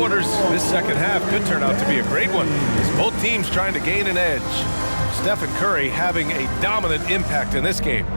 this second half could turn out to be a great one, as both teams trying to gain an edge. Stephen Curry having a dominant impact in this game.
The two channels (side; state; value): both; inverted; correlation -1.00